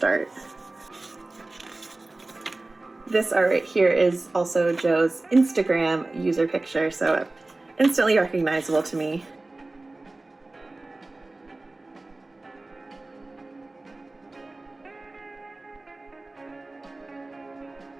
This art right here is also Joe's Instagram user picture, so instantly recognizable to me.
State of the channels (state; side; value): quieter; left; 3.0 dB